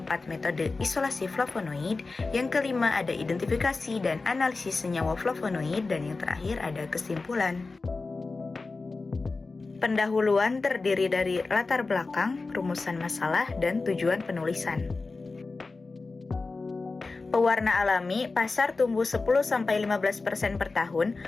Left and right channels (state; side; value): quieter; right; 3.8 dB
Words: metode isolasi flavonoid, yang kelima ada identifikasi dan analisis senyawa flavonoid, dan yang terakhir ada kesimpulan. Pendahuluan terdiri dari latar belakang, rumusan masalah, dan tujuan penulisan. Pewarna alami, pasar tumbuh 10-15% per tahun.